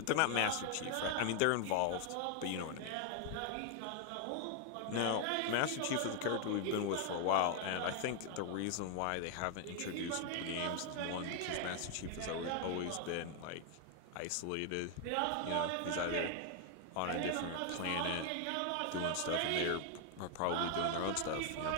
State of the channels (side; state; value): both; different; correlation 0.00